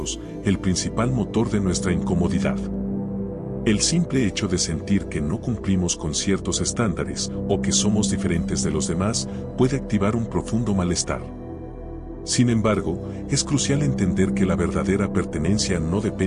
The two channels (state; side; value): identical; both; correlation 1.00